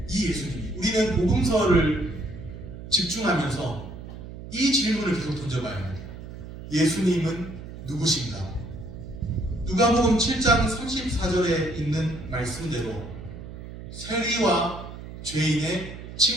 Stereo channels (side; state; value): right; noise; hum, 12 dB below the sound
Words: 이 예수님이, 우리는 복음서를 집중하면서 이 질문을 계속 던져봐야 합니다. 예수님은 누구신가? 누가복음 7장 34절에 있는 말씀대로 세리와 죄인의